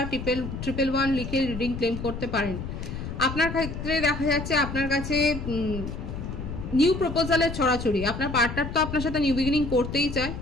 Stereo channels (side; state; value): left; noise; rumble, 7 dB below the sound